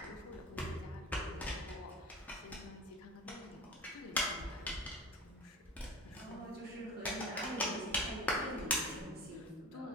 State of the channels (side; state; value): both; normal; correlation 0.33